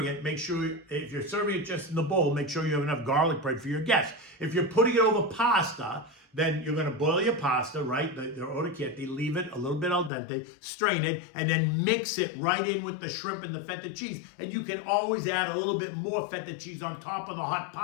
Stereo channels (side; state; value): right; drops out; at 10.1 s